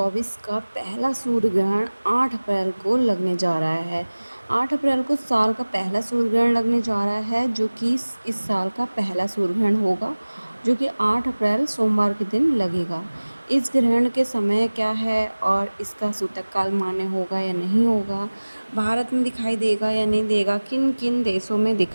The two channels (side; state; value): both; inverted; correlation -1.00